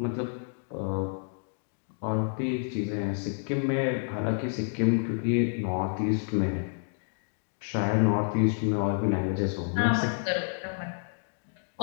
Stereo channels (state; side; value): silent; right; 58 dB below the other